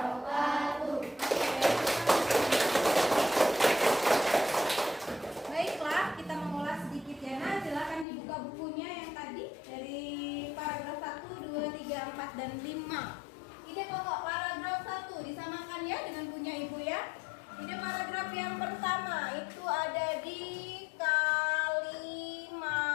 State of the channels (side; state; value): right; drops out; at 8.1 s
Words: Baiklah, kita mengulas sedikit ya. Nah, silakan dibuka bukunya yang tadi dari paragraf 1, 2, 3, 4, dan 5. Ide pokok paragraf 1 disamakan ya dengan punya Ibu ya. Ide paragraf yang pertama itu ada di